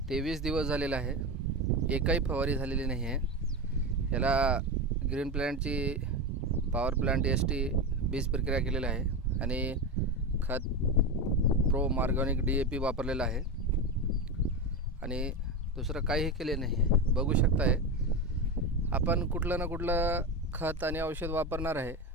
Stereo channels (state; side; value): normal; both; correlation 0.19